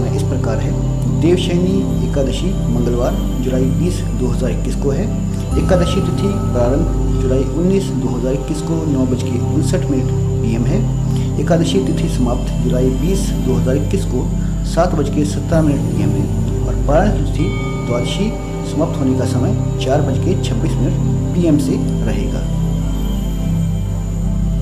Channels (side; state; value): both; identical; correlation 1.00